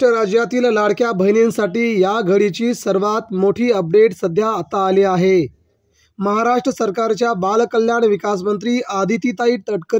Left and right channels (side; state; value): both; identical; correlation 1.00